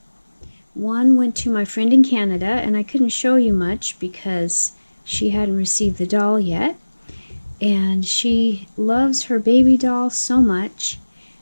One went to my friend in Canada, and I couldn't show you much because she hadn't received the doll yet. And she loves her baby doll so much.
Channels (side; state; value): both; inverted; correlation -1.00